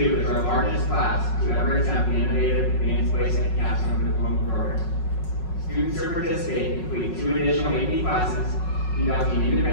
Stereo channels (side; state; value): right; late; 5.4 ms